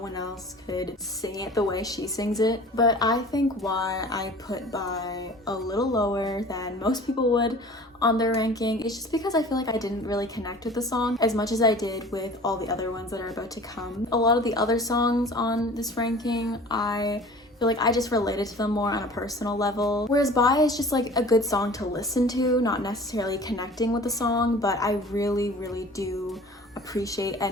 else could sing it the way she sings it. But I think why I put Bye a little lower than most people would on their ranking is just because I feel like I didn't really connect with the song as much as I did with all the other ones that are about to come. A lot of the other songs on this ranking, I feel like I just related to them more on a personal level. Whereas Bye is just like a good song to listen to, not necessarily connecting with the song, but I really do appreciate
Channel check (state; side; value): normal; both; correlation 0.44